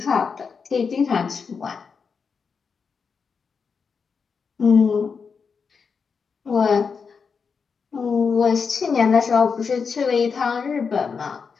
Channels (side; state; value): right; quieter; 5.6 dB